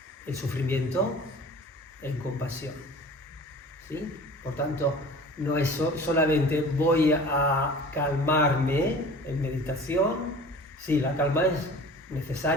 el sufrimiento en compasión, ¿sí? Por tanto, no es solamente voy a calmarme en meditación. Sí, la calma es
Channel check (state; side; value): normal; both; correlation 0.42